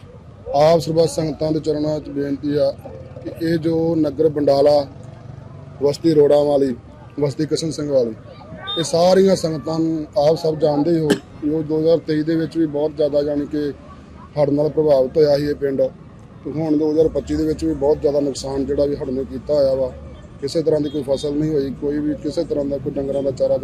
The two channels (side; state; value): both; identical; correlation 1.00